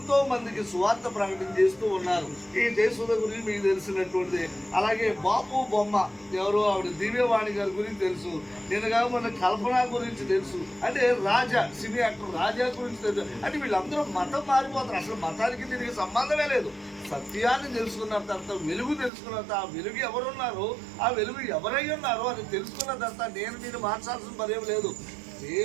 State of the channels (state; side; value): drops out; left; at 19.1 s